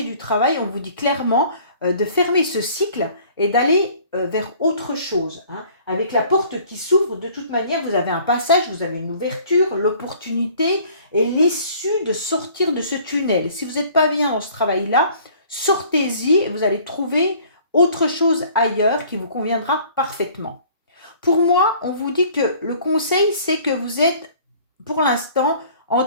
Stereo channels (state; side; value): inverted; both; correlation -0.53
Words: du travail, on vous dit clairement de fermer ce cycle et d'aller vers autre chose, hein. Avec la porte qui s'ouvre, de toute manière, vous avez un passage, vous avez une ouverture, l'opportunité et l'issue de sortir de ce tunnel. Si vous n'êtes pas bien dans ce travail-là, sortez-y et vous allez trouver autre chose ailleurs qui vous conviendra parfaitement. Pour moi, on vous dit que le conseil, c'est que vous êtes, pour l'instant,